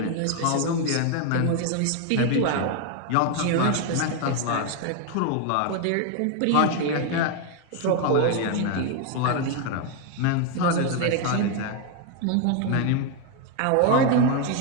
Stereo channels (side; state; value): both; different; correlation 0.01